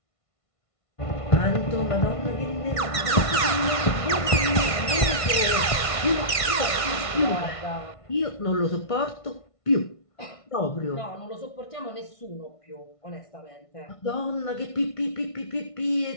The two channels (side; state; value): right; late; 1.5 ms